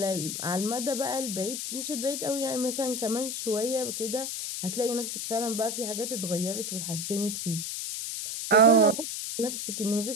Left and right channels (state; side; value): noise; left; hiss, 4 dB below the sound